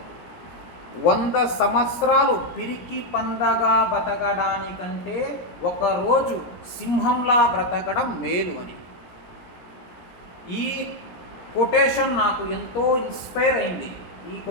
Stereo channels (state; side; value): late; right; 17 ms